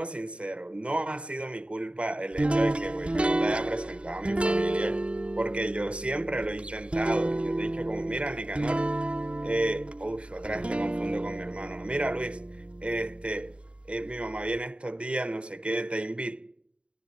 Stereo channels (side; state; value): left; late; 0.058 ms